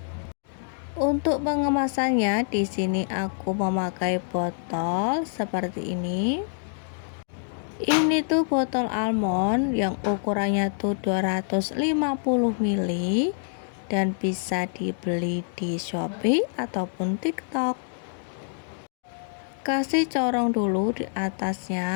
Untuk pengemasannya di sini aku memakai botol seperti ini. Ini tuh botol almond yang ukurannya tuh 250 ml dan bisa dibeli di Shopee ataupun TikTok. Kasih corong dulu di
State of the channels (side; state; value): right; silent; digital silence